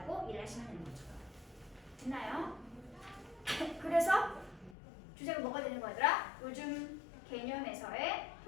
이해하시면 되는 거죠. 됐나요? 그래서 주제가 뭐가 되는 거더라? 요즘 개념에서의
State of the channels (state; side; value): drops out; right; at 4.8 s